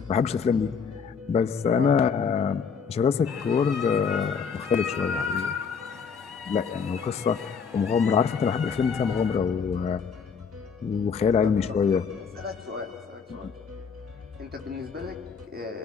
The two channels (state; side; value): quieter; right; 6.1 dB